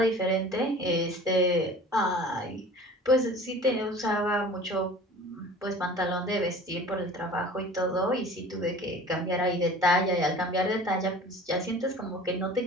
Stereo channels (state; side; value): normal; both; correlation 0.43